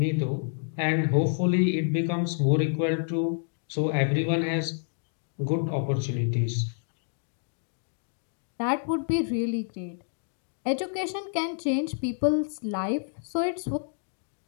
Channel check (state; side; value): silent; right; digital silence